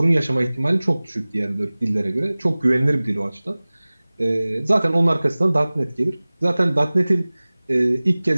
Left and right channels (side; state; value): both; inverted; correlation -0.99